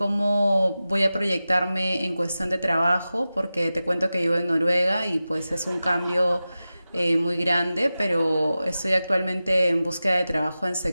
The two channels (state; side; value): inverted; both; correlation -0.94